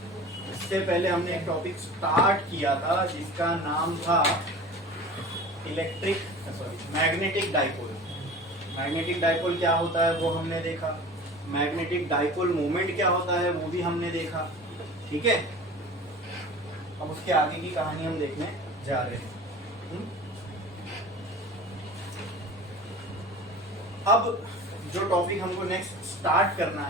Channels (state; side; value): normal; both; correlation 0.38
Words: इससे पहले हमने एक टॉपिक स्टार्ट किया था जिसका नाम था मैग्नेटिक डाइपोल। मैग्नेटिक डाइपोल क्या होता है वो हमने देखा, मैग्नेटिक डाइपोल मोमेंट क्या होता है वो भी हमने देखा, ठीक है। अब उसके आगे की कहानी हम देखने जा रहे हैं। अब जो टॉपिक हमको नेक्स्ट स्टार्ट करना